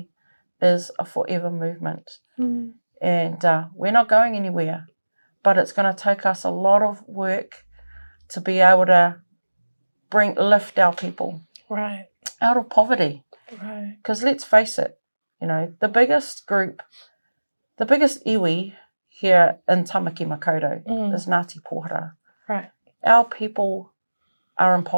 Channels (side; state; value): both; inverted; correlation -1.00